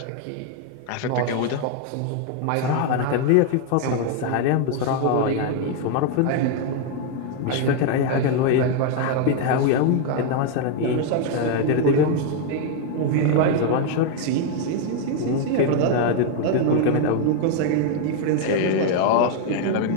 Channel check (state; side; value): different; both; correlation 0.00